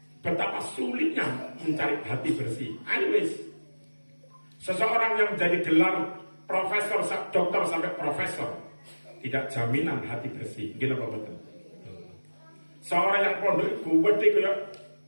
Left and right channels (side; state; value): both; inverted; correlation -1.00